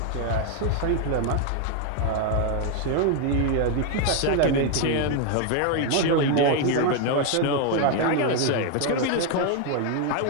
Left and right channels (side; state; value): both; different; correlation 0.01